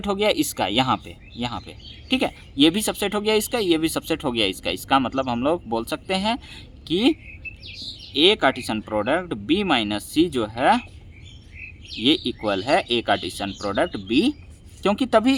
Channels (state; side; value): identical; both; correlation 1.00